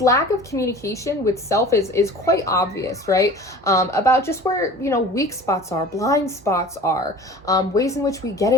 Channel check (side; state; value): both; normal; correlation 0.41